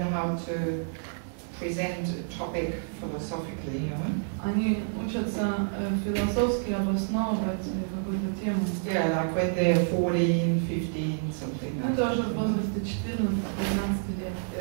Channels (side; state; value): left; silent; digital silence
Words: how to present a topic philosophically, Они учатся философски обосновывать какую-то тему. Yeah, like when they're 14, 15, something like that. Это уже в возрасте 14-15 лет.